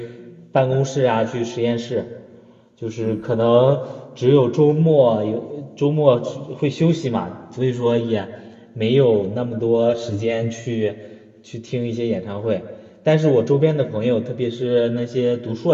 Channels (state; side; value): identical; both; correlation 1.00